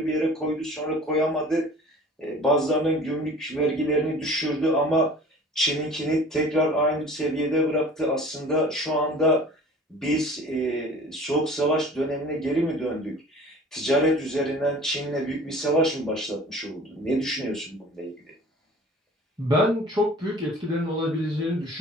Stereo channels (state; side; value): normal; both; correlation 0.45